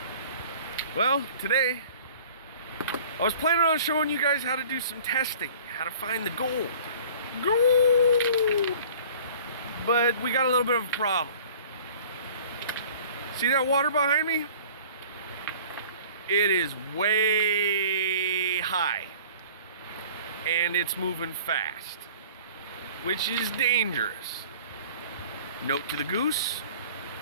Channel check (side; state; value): both; inverted; correlation -0.47